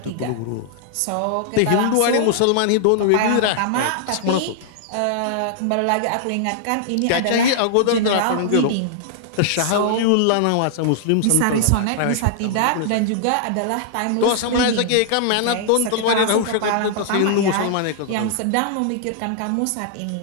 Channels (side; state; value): both; different; correlation -0.01